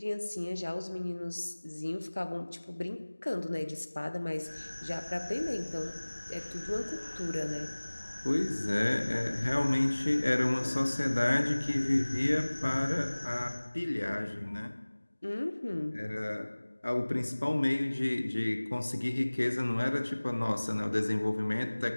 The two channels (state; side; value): inverted; both; correlation -1.00